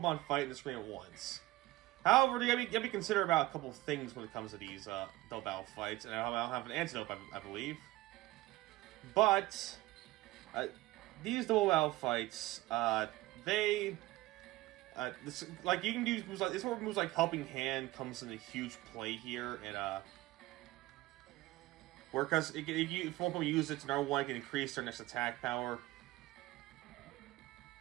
fight in the screen at once. However, you gotta be considerate about a couple of things when it comes to these double battle fights, and I don't have an antidote, I believe. But these double battle fights, you can use moves like this. Where moves like Helping Hand comes into huge play here, and because if one Pokemon uses it to number one, it can increase their next attack power.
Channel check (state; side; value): quieter; left; 18.6 dB